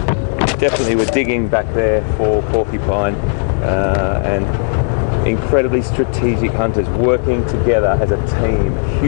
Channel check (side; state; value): right; silent; 70 dB below the other